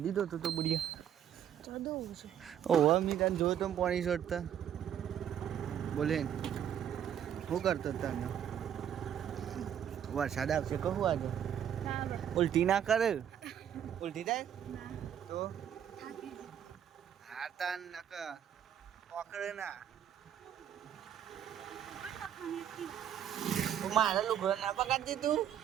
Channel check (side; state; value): left; quieter; 9.7 dB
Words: ધોતો તો બુડિયા ચડવું છે. ઓહો મી તને જોયો તો પાણી છોડતા બોલે શું કરતો તને વરસાદ આવશે કહું આજે ઉલટી ના કરે ઉલટી થાય તો હા તાન નક પકડે ના મારા લુગડો ના પકડતી તું